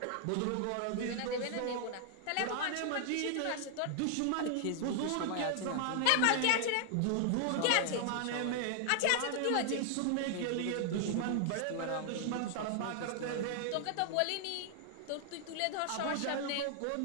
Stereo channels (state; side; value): different; both; correlation 0.00